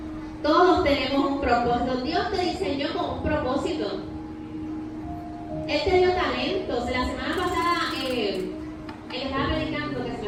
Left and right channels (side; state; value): both; identical; correlation 1.00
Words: Todos tenemos un propósito. Dios te diseñó con un propósito. Él te dio talentos. La semana pasada, él estaba predicando, que se